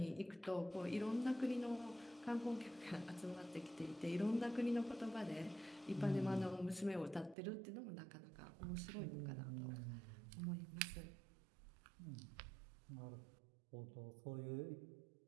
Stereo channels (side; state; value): left; drops out; at 7.4 s